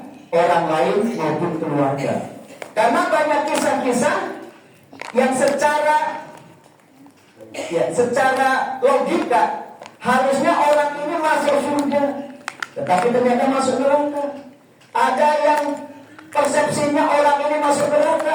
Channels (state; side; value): identical; both; correlation 1.00